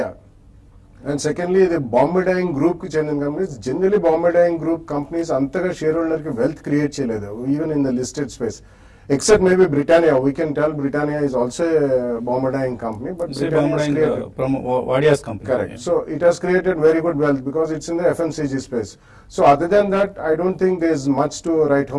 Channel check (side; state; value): both; identical; correlation 1.00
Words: సెకండ్లీ ఇది బాంబే డైయింగ్ గ్రూప్ కి చెందిన companies. Generally Bombay Dyeing group companies అంతగా షేర్ హోల్డర్ కి వెల్త్ క్రియేట్ చేయలేదు even in the listed space. except maybe Britannia. We can tell Britannia is also a Bombardine company, but Britannia is created. From Wadia's company. Correct. So it has created very good wealth because it's in the FMCG space. So other than that, I don't think there's much to write